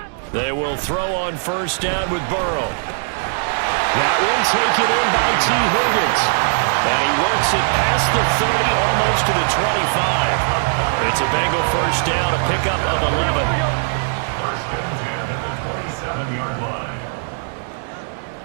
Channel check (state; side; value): silent; left; digital silence